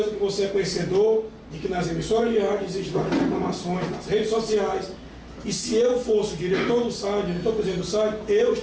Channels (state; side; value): identical; both; correlation 1.00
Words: que você é conhecedor de que nas emissoras de rádio existem várias reclamações, nas redes sociais, e se eu fosse o diretor do SAI, diretor-presidente do SAI, eu